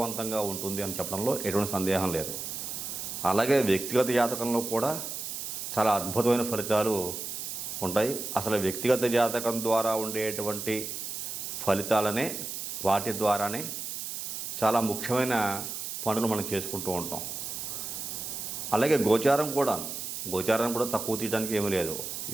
ఉంటుంది అని చెప్పడంలో ఎటువంటి సందేహం లేదు. అలాగే వ్యక్తిగత జాతకంలో కూడా చాలా అద్భుతమైన ఫలితాలు ఉంటాయి. అసలు వ్యక్తిగత జాతకం ద్వారా ఉండేటువంటి ఫలితాలనే, వాటి ద్వారానే చాలా ముఖ్యమైన పనులు మనం చేసుకుంటూ ఉంటాం. అలాగే గోచారం కూడా తక్కువ తీయడానికి ఏమీ లేదు.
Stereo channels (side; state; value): right; noise; hiss, 6 dB below the sound